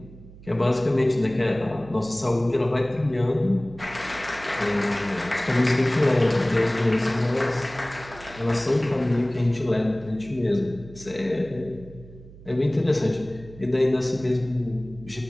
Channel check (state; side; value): noise; right; hum, 19 dB below the sound